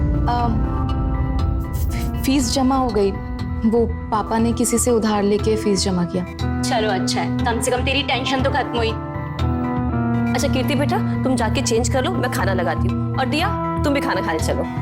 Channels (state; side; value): identical; both; correlation 1.00